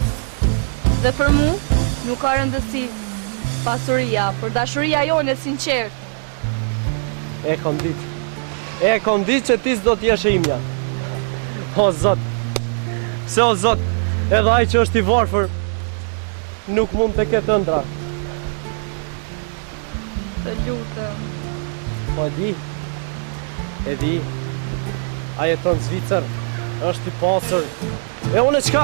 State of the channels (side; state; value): left; silent; digital silence